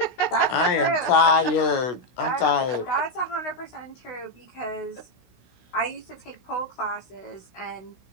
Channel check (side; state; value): right; late; 16 ms